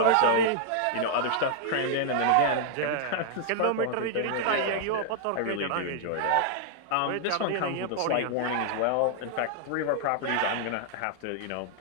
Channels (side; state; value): both; different; correlation -0.01